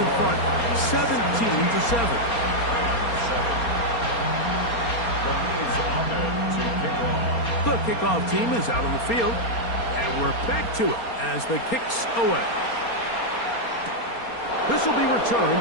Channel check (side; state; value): right; late; 4.3 ms